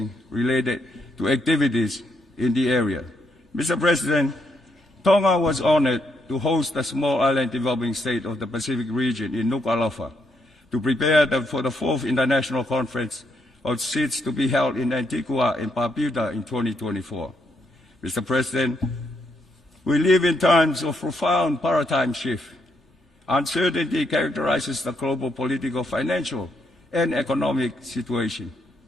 related to activities in the area. Mr. President, Tonga was honored to host the Small Island Developing State of the Pacific region in Nuku'alofa to prepare for the 4th International Conference of SIDS to be held in Antigua and Barbuda in 2024. Mr. President, we live in times of profound paradigm shift. Uncertainty characterizes the global political, financial, and economic situation.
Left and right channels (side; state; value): both; normal; correlation 0.76